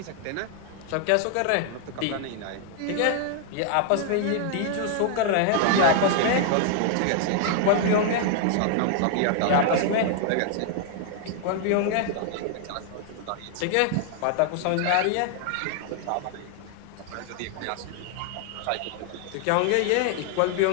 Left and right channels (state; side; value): different; both; correlation 0.00